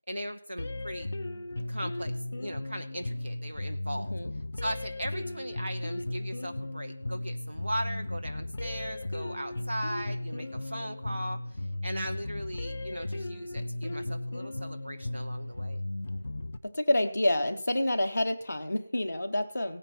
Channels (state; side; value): inverted; both; correlation -0.97